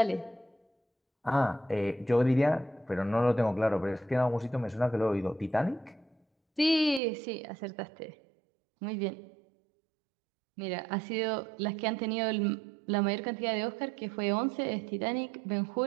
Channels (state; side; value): drops out; left; at 7.0 s